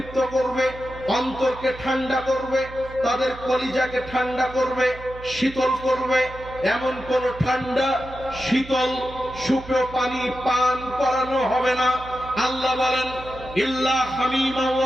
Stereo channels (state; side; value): noise; right; hum, 15 dB below the sound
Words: করবে, অন্তরকে ঠান্ডা করবে, তাদের কলিজাকে ঠান্ডা করবে, শীতল করবে, এমন কোন ঠান্ডা শীতল সুপেয় পানি পান করানো হবে না। আল্লাহ বলেন, ইল্লা হামিমা